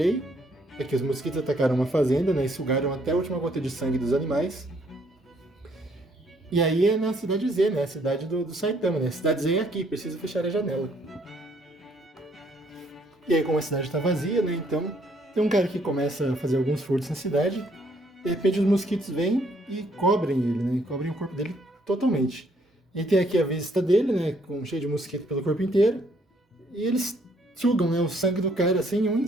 É que os mosquitos atacaram uma fazenda, né, e sugaram até a última gota de sangue dos animais. E aí é na cidade Z, né? A cidade do Saitama, né? A cidade Z é aqui, precisa fechar a janela. E aí, como a cidade está vazia, né? Então, tem um cara que começa a fazer alguns furtos na cidade. De repente, os mosquitos vêm e cobrem ele, né? Cobrem o corpo dele totalmente. E tem aqui a vista dele, né? Cheio de mosquito pelo corpo inteiro. E eles sugam, né, o sangue do cara assim em um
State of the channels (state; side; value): normal; both; correlation 0.67